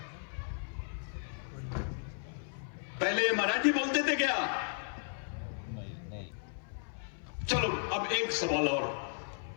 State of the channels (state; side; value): silent; right; 54 dB below the other